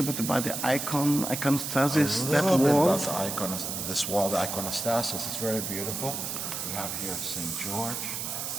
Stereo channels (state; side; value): noise; right; hiss, 4 dB below the sound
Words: bit about the iconostasis? That wall? About this wall, the iconostasis. It's very beautiful. We have here St. George,